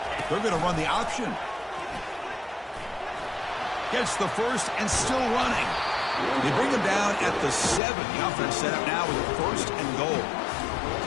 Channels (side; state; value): right; drops out; at 7.8 s